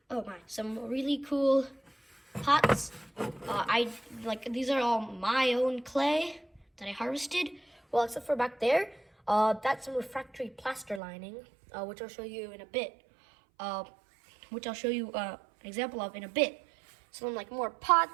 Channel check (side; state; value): left; drops out; at 11.0 s